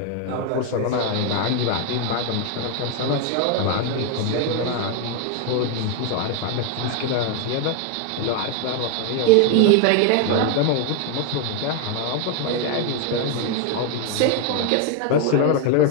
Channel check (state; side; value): different; both; correlation 0.01